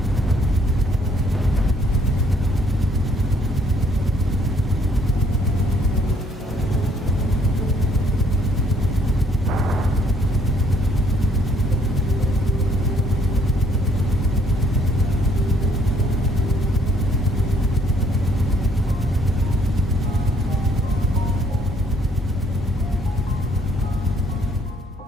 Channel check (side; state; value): both; normal; correlation 0.65